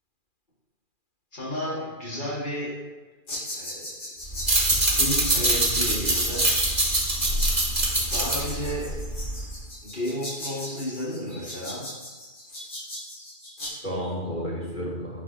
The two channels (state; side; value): late; right; 2.4 ms